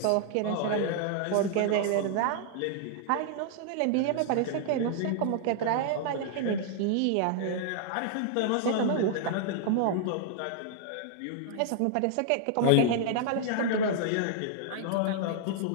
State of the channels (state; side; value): different; both; correlation -0.01